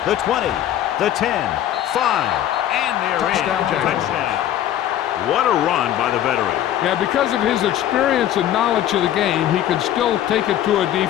The 20, the 10, 5, and they're Touchdown, in. Jaguars. Touchdown. What a run by the veteran. Yeah, because of his experience and knowledge of the game, he can still take it to a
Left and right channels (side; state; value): right; quieter; 11.7 dB